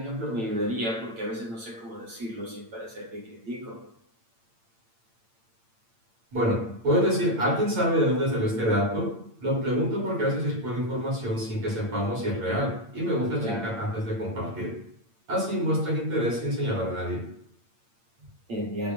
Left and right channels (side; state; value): left; late; 8.8 ms